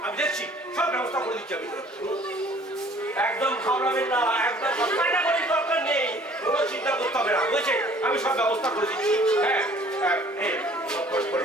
আমি দেখছি, সব ব্যবস্থা করে দিচ্ছি আমি। একদম ঘাবড়াবেন না, একদম কান্নাকাটির দরকার নেই, কোনো চিন্তা করতে হবে না, বুঝেছেন? আমি সব ব্যবস্থা করে দিচ্ছি। হ্যাঁ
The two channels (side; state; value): both; normal; correlation 0.54